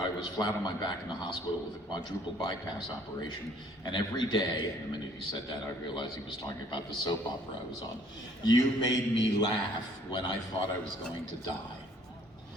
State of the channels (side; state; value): both; normal; correlation 0.59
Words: was flat on my back in the hospital with a quadruple bypass operation, and every day, and the minute he said that, I realized he was talking about the soap opera I was on. You made me laugh when I thought I was going to die.